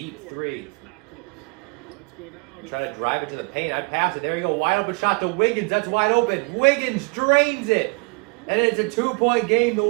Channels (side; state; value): left; quieter; 31.0 dB